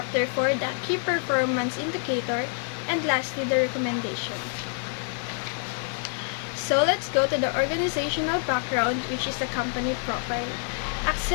4, the key performance indicator, and lastly, the recommendation. So let's go to the organizational background, which is the company profile.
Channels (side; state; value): right; silent; 58 dB below the other